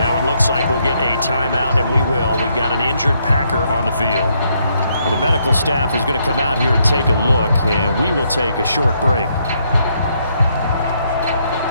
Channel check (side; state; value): both; inverted; correlation -0.74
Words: it looks like we'll get a timeout, and we will. We've got an injured Packer on the field. Well, the medical staff is going to come out here and take a look, and we will take a short break.